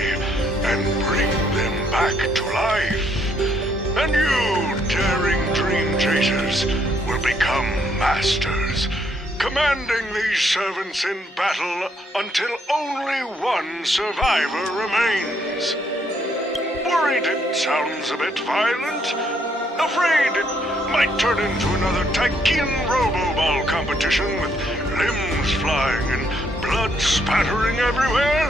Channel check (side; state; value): both; normal; correlation 0.71